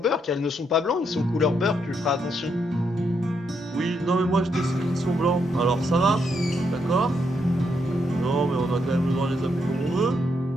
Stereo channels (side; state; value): both; normal; correlation 0.78